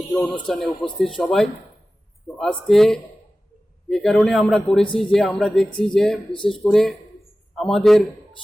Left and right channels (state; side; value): normal; both; correlation 0.96